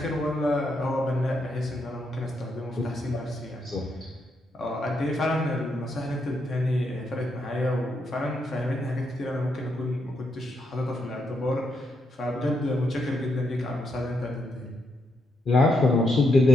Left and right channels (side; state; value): both; normal; correlation 0.80